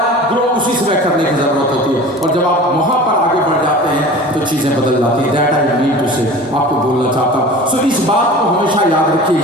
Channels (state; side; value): normal; both; correlation 0.39